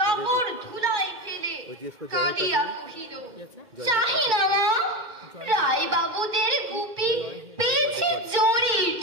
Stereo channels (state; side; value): late; left; 2.3 ms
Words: কাপড় ধুলাই ফেলে কাঁদিয়া কহিল, চাহি না মা, রায় বাবুদের গুপি পেয়েছে জরির